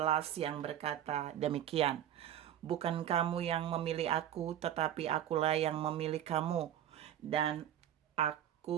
yang berkata demikian. Bukan kamu yang memilih aku, tetapi akulah yang memilih kamu. Dan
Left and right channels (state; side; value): quieter; left; 11.0 dB